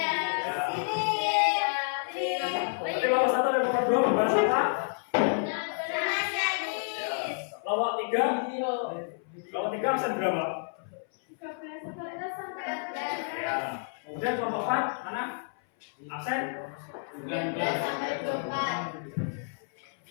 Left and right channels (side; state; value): right; silent; 58 dB below the other